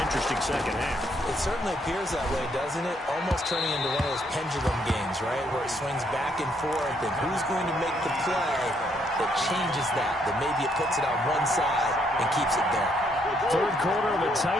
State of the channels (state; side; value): normal; both; correlation 0.72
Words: interesting second half. It certainly appears that way, doesn't it? Almost turning into one of those pendulum games, right, where it swings back and forth, and who's going to make the play that changes that maybe it puts it on one side and keeps it there. 3rd quarter of a